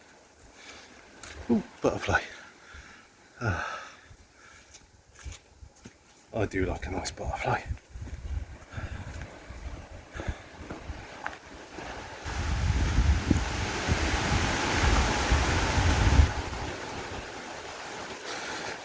Ooh, butterfly. I do like a nice butterfly.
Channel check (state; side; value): identical; both; correlation 1.00